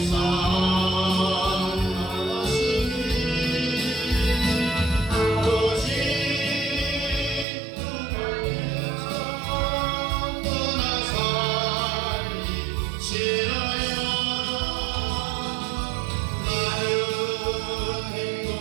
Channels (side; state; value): left; drops out; at 7.5 s